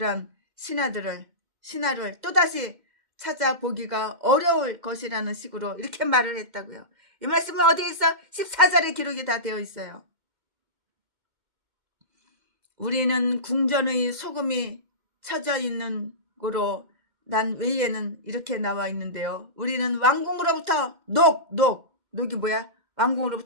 신하를 또다시 찾아보기가 어려울 것이라는 식으로 이렇게 말을 했다고요. 이 말씀은 어디에 있어? 14절에 기록이 다 되어 있어요. 우리는 궁전의 소금이 쳐져 있는 거로 난 외에는 이렇게 나와 있는데요. 우리는 왕궁으로부터 녹이 뭐야?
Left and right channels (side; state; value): left; late; 2.1 ms